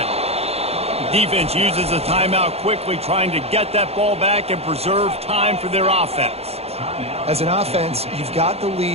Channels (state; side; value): late; left; 0.29 ms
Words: Defense uses a timeout quickly, trying to get that ball back and preserve time for their offense. As an offense, you've got the